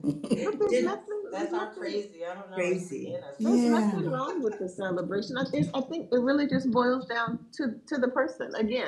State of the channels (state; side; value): identical; both; correlation 1.00